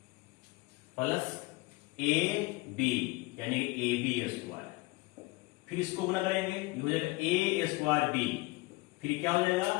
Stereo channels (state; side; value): quieter; right; 23.3 dB